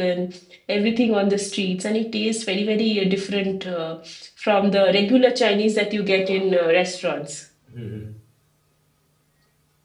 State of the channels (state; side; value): identical; both; correlation 1.00